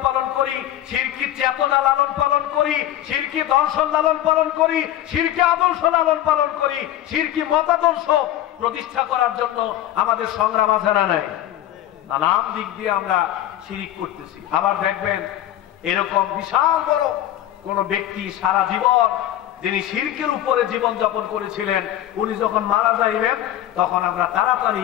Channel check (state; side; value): quieter; right; 12.9 dB